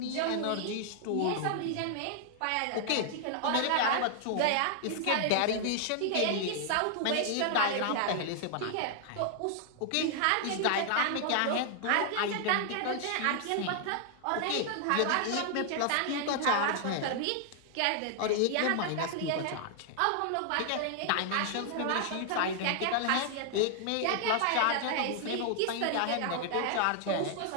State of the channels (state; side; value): different; both; correlation 0.00